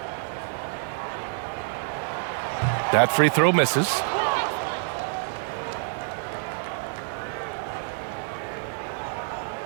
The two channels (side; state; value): left; silent; 60 dB below the other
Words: That free throw misses.